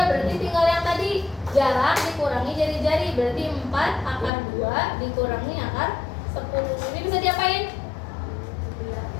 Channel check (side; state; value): right; drops out; at 4.3 s